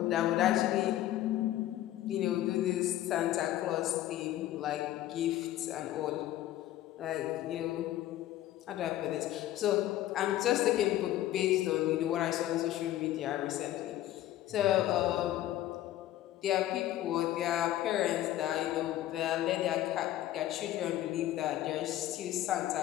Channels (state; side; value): quieter; right; 13.7 dB